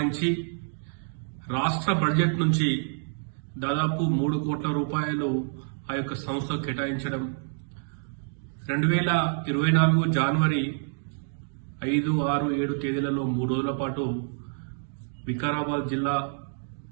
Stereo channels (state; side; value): silent; left; digital silence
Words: రాష్ట్ర బడ్జెట్ నుంచి దాదాపు 3 కోట్ల రూపాయలు ఆ యొక్క సంస్థ కేటాయించడం, 2024 జనవరి 5, 6, 7 తేదీలలో 3 రోజుల పాటు వికారాబాద్ జిల్లా